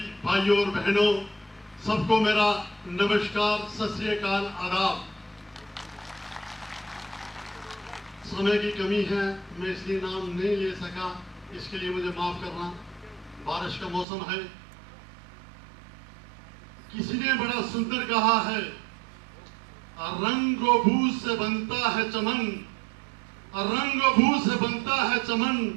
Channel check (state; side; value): drops out; left; at 14.1 s